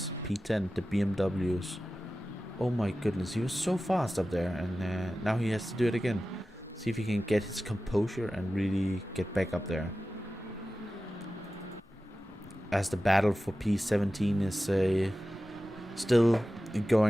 P10, the BMWs. Oh my goodness, he was so fast up there, and now he has to do it again. See if he can get his composure and really get back up there. As the battle for P17 is still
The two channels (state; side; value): normal; both; correlation 0.94